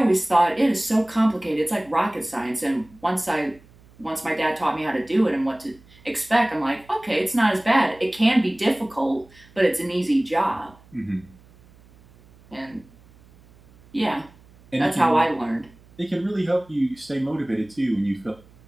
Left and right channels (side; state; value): right; noise; hum, 26 dB below the sound